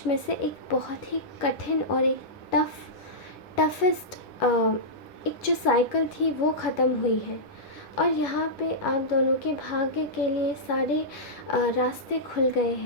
में से एक बहुत ही कठिन और एक टफेस्ट एक जो साइकिल थी वो ख़त्म हुई है और यहाँ पे आप दोनों के भाग्य के लिए सारे रास्ते खुल गए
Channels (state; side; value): late; right; 10 ms